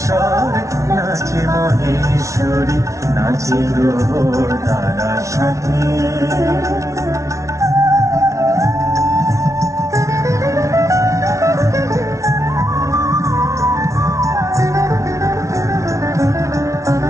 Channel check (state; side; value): late; left; 0.14 ms